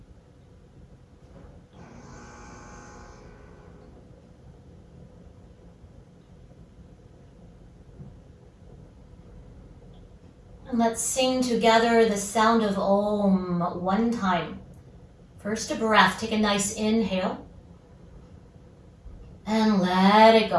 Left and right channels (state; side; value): identical; both; correlation 1.00